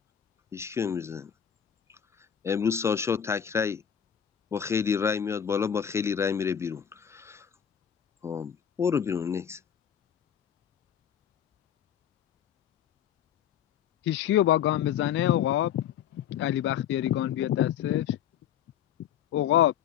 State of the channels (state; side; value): quieter; right; 9.1 dB